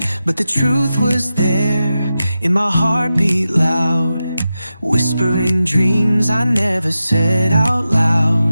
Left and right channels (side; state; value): both; inverted; correlation -0.92